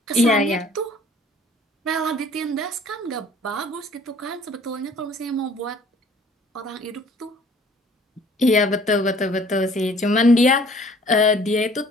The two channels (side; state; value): both; normal; correlation 0.54